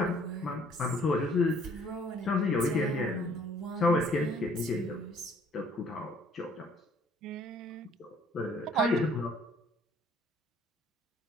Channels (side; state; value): both; normal; correlation 0.59